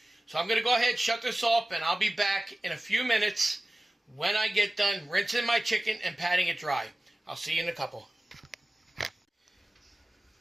So I'm going to go ahead and shut this off, and I'll be back in a few minutes when I get done rinsing my chicken and patting it dry. I'll see you in a couple.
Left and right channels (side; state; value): both; normal; correlation 0.96